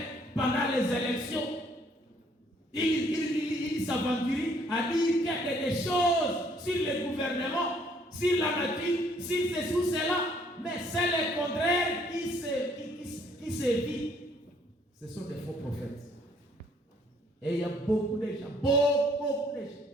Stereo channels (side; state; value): both; normal; correlation 0.64